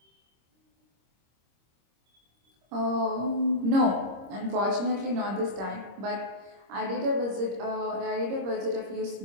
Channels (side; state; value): left; late; 26 ms